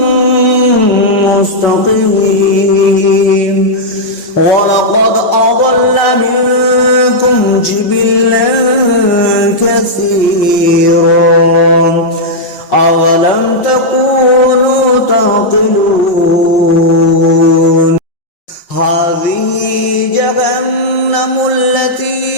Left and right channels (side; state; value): right; late; 5.6 ms